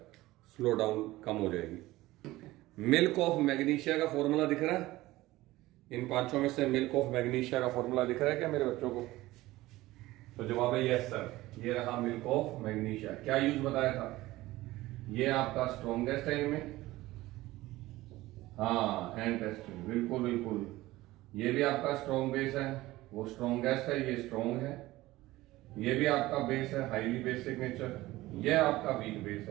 slow down calm हो जाएगी। मिल्क ऑफ मैग्नीशिया का फॉर्मूला दिख रहा है? इन पांचों में से मिल्क ऑफ मैग्नीशिया का फॉर्मूला दिख रहा है क्या मेरे बच्चों को? तो जवाब है यस सर, ये रहा मिल्क ऑफ मैग्नीशिया। क्या यूज बताया था? ये आपका स्ट्रॉन्गेस्ट है इनमें, हाँ एंड टेस्ट, बिल्कुल बिल्कुल। ये भी आपका स्ट्रॉन्ग बेस है, वो स्ट्रॉन्गेस्ट है, ये स्ट्रॉन्ग है। ये भी आपका बेस है हाईली बेसिक नेचर, ये आपका वीक बेस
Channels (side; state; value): left; quieter; 17.9 dB